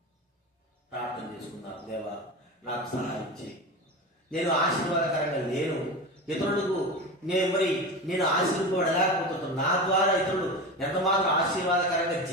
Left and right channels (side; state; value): both; normal; correlation 0.26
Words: ప్రార్థన చేసుకుందాం. దేవా, నాకు సహాయం చేయి. నేను ఆశీర్వాదకరంగా లేను, ఇతరులకు నేను ఆశీర్వపడలేకపోతున్నాను. నా ద్వారా ఇతరులు ఎంత మాత్రం ఆశీర్వాదకరంగా